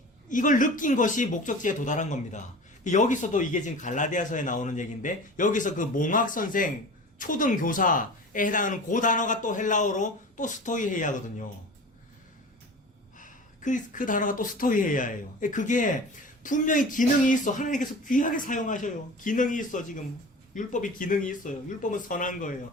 이걸 느낀 것이 목적지에 도달한 겁니다. 여기서도 이게 지금 갈라디아서에 나오는 얘기인데 여기서 그 몽학 선생 초등 교사에 해당하는 그 단어가 또 헬라어로 또 스토이헤이아거든요. 그 단어가 또 스토이헤이아예요. 그게 분명히 기능이 있어. 하나님께서 귀하게 사용하셔요. 기능이 있어. 지금 율법이 기능이 있어요. 율법은 선한 거예요.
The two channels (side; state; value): both; normal; correlation 0.37